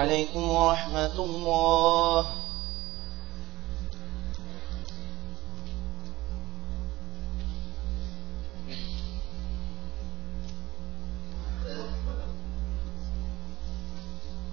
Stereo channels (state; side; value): quieter; left; 18.7 dB